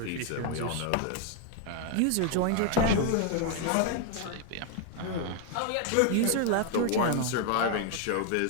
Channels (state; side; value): different; both; correlation 0.01